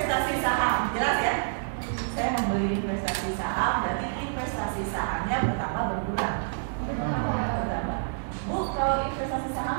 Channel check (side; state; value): left; silent; digital silence